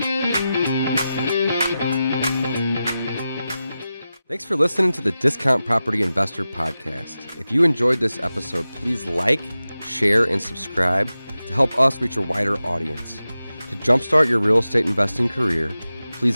Thanks for listening to the Discount Property Investor Podcast. If you enjoyed this episode, please like, share, and subscribe to help us reach a wider audience. To jumpstart your real estate investing career,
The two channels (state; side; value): inverted; both; correlation -0.93